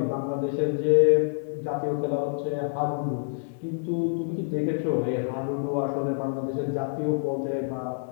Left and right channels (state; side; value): silent; right; digital silence